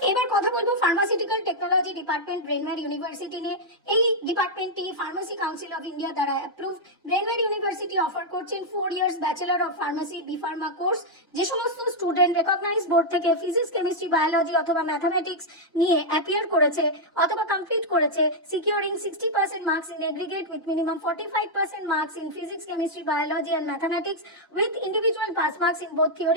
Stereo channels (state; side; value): normal; both; correlation -0.03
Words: এবার কথা বলবো pharmaceutical technology department Brainware university নিয়ে। এই ডিপার্টমেন্টটি ফার্মাসি কাউন্সিল অফ ইন্ডিয়া দ্বারা অ্যাপ্রুভড। ব্রেনওয়্যার ইউনিভার্সিটি অফার করছেন 4 years bachelor of pharmacy B pharma course. যে সমস্ত স্টুডেন্ট রেকগনাইজ বোর্ড থেকে ফিজিক্স, কেমিস্ট্রি, বায়োলজি অথবা ম্যাথামেটিক্স নিয়ে অ্যাপিয়ার করেছে অথবা কমপ্লিট করেছে securing 60% marks in aggregate with minimum 45% marks in physics, chemistry, biology and mathematics with individual pass marks in both